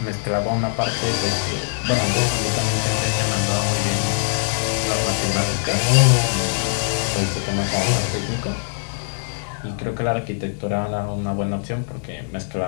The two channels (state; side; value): silent; right; digital silence